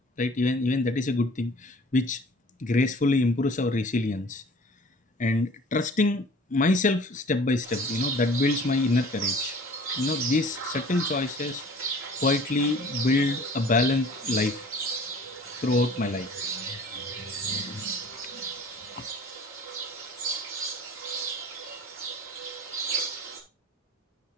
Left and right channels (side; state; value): both; normal; correlation 0.47